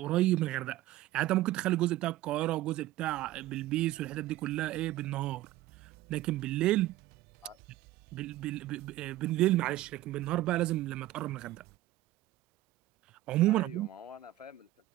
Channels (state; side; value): quieter; left; 15.8 dB